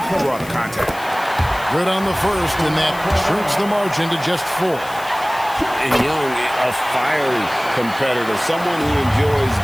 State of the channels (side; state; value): left; noise; hiss, 18 dB below the sound